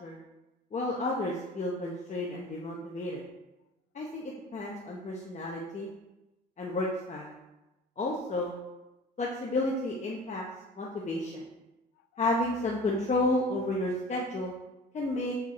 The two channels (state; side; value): normal; both; correlation 0.42